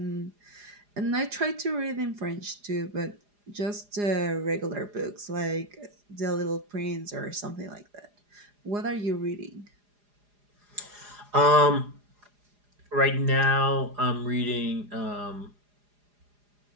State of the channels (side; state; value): left; late; 4.9 ms